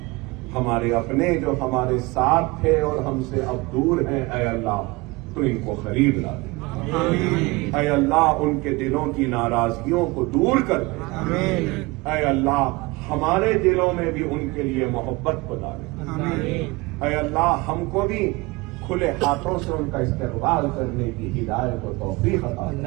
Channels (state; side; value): quieter; left; 23.7 dB